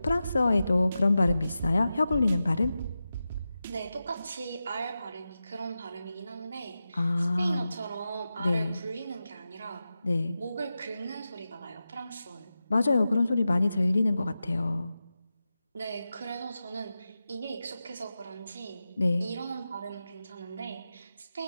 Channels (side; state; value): both; inverted; correlation -0.92